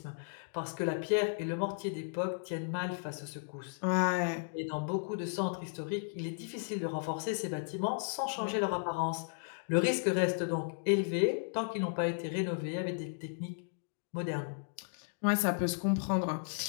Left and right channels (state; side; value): silent; right; digital silence